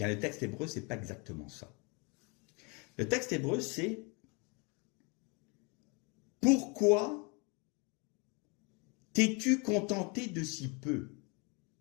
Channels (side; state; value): right; quieter; 31.4 dB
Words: le texte hébreu, c'est pas exactement ça. Le texte hébreu, c'est « Pourquoi t'es-tu contenté de si peu ?»